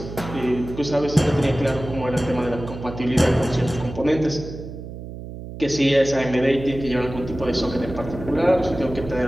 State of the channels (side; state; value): right; noise; hum, 11 dB below the sound